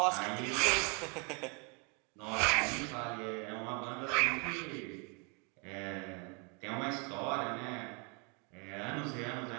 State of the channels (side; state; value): left; quieter; 33.4 dB